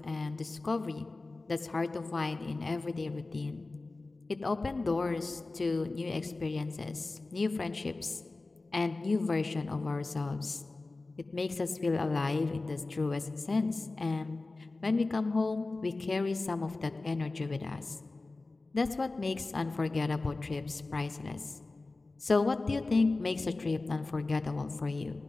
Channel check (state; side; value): quieter; right; 3.3 dB